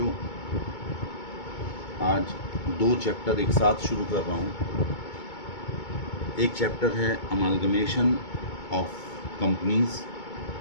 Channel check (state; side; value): late; right; 2.2 ms